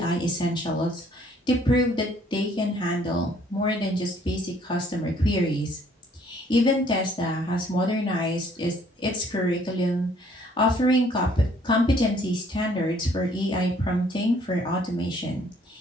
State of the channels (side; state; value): both; normal; correlation 0.61